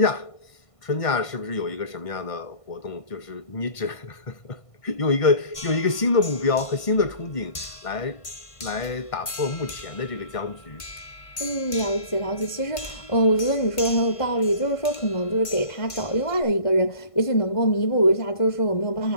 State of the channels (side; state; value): right; late; 1.5 ms